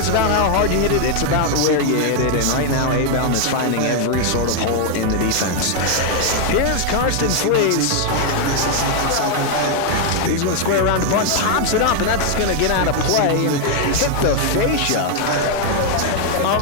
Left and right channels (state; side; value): different; both; correlation 0.00